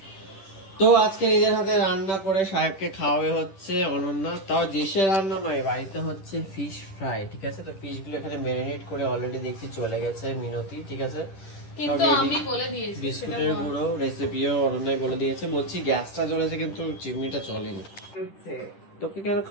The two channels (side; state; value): right; late; 10 ms